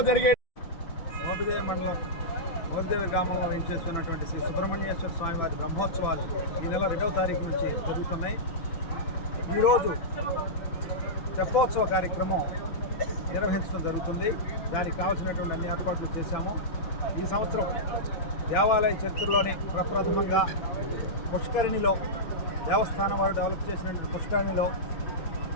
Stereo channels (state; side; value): late; right; 6.0 ms